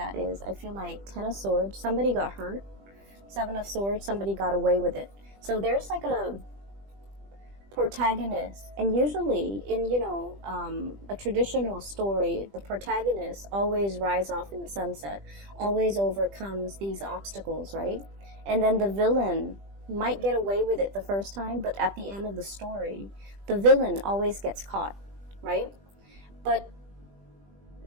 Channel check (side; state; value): left; late; 20 ms